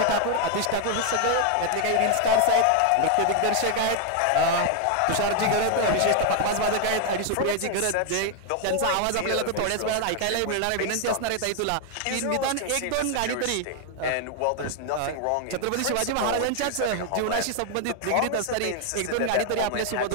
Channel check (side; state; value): both; different; correlation 0.00